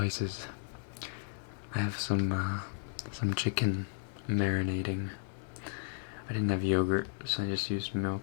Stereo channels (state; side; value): silent; right; digital silence